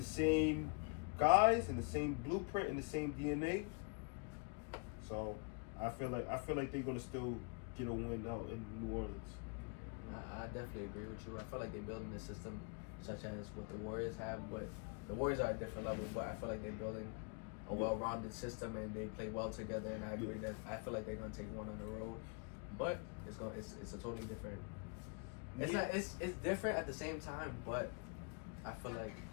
same guys and the same blueprint and the same DNA. So I feel like they're gonna still get a win out in New Orleans. I definitely agree with you. I feel like they're building a system such as what the Warriors have, but the Warriors are at a different level. But I feel like they're building a well-rounded system and they play well together. And I agree that I feel like they're gonna take one on the road, but it's a totally different. It's different at the same time, but I feel like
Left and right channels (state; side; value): quieter; right; 34.4 dB